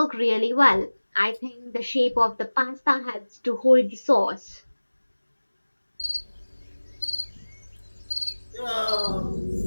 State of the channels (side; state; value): both; inverted; correlation -1.00